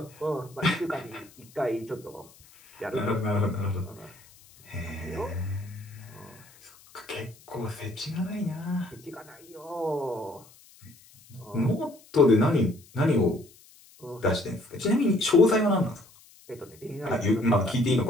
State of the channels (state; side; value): noise; left; hiss, 25 dB below the sound